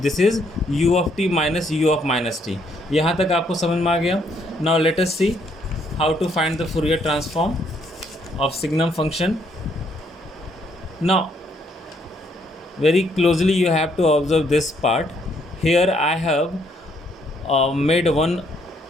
this is u of t minus u of minus t. यहाँ तक आपको समझ में आ गया। Now let us see how to find the Fourier transform of signum function. Now very closely you have to observe this part. Here I have made one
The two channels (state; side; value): normal; both; correlation 0.70